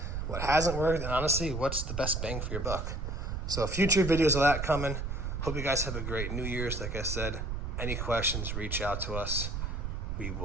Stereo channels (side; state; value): right; noise; rumble, 3 dB below the sound